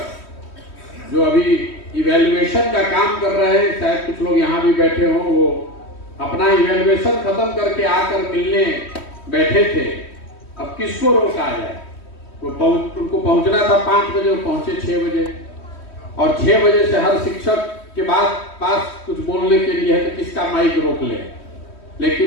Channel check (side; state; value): right; late; 3.1 ms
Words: जो अभी इवैल्यूएशन का काम कर रहे हैं, शायद कुछ लोग यहाँ भी बैठे हों, वो अपना इवैल्यूएशन खत्म करके आकर मिलने बैठे थे। अब किसको रोका जाए? उनको पहुंचना था 5 बजे, वो पहुंचे 6 बजे और 6 बजे से हर शिक्षक के बाद पास कुछ बोलने के लिए है तो किसका माइक रोक ले।